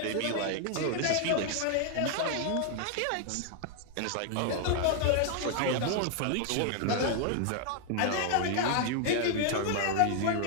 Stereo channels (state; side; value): different; both; correlation 0.00